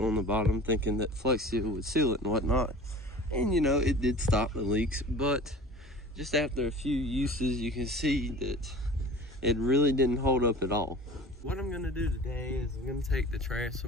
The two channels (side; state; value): both; normal; correlation 0.40